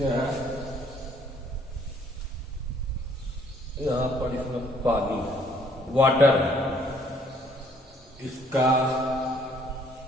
यहाँ पर इसमें पानी वाटर, इसका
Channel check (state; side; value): normal; both; correlation 0.62